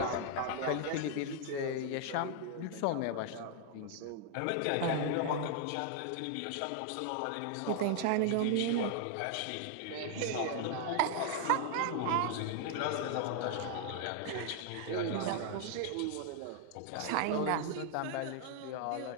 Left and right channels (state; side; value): different; both; correlation 0.00